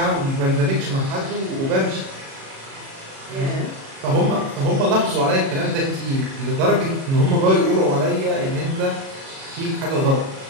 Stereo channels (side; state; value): left; late; 37 ms